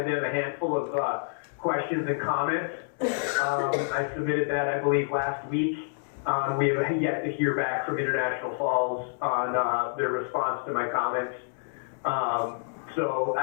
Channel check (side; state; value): right; silent; digital silence